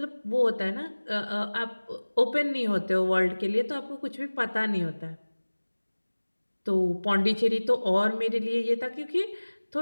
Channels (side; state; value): both; inverted; correlation -1.00